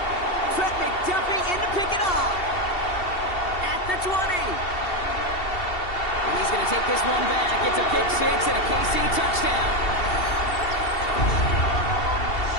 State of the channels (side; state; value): right; late; 2.7 ms